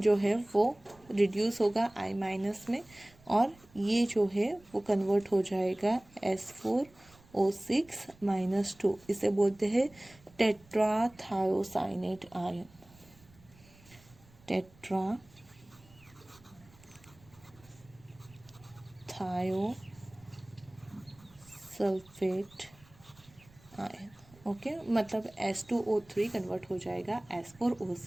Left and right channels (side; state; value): right; noise; rumble, 27 dB below the sound